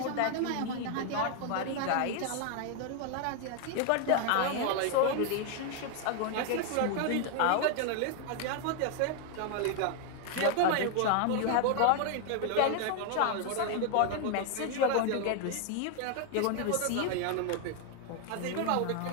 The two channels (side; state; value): both; different; correlation 0.00